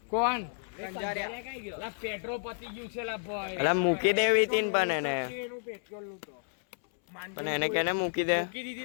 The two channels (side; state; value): right; silent; 57 dB below the other